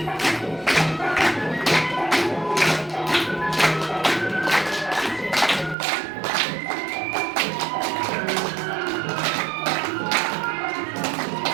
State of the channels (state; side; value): drops out; left; at 5.8 s